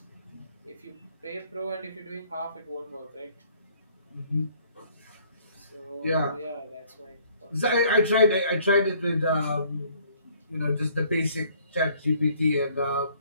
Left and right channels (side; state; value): both; inverted; correlation -0.61